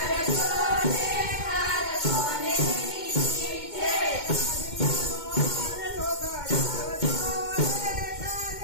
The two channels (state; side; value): late; right; 2.2 ms